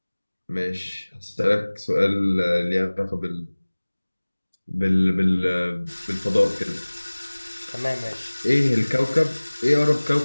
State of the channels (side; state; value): both; inverted; correlation -1.00